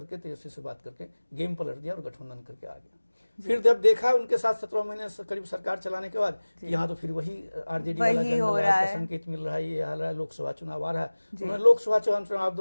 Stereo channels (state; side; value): inverted; both; correlation -1.00